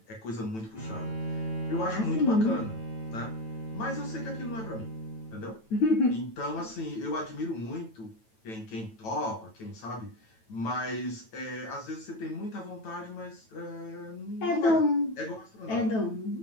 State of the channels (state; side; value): late; right; 9.1 ms